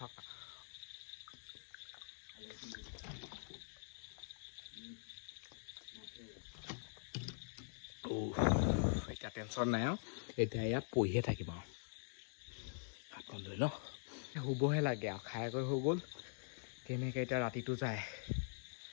এতিয়া টেনশ্যন নাই আৰু এতিয়া ইয়াত পঢ়িয়ে থাকিম আৰু হাতখন লৈ ন শুবহে লাগে আৰু খাই কৰি হৈ গ'ল কেনেকৈ এতিয়া ৰাতিটো যায়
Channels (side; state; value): right; silent; digital silence